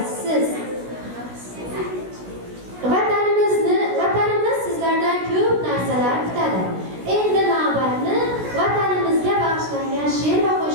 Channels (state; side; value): late; left; 16 ms